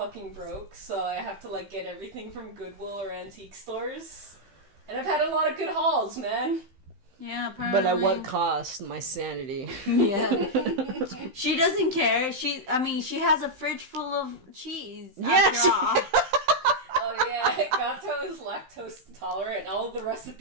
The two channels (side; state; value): left; late; 15 ms